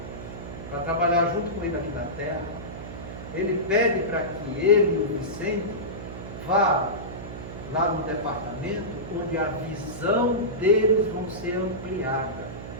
para trabalhar junto com ele aqui na Terra, ele pede para que ele e o Vicente vá lá no departamento onde a visão deles vão ser ampliada,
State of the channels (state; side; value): noise; right; hum, 10 dB below the sound